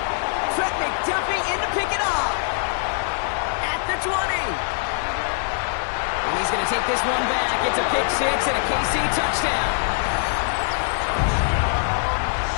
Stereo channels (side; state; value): right; silent; digital silence